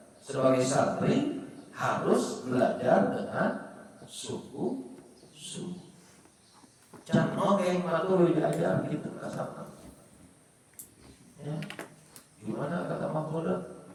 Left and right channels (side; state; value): both; identical; correlation 1.00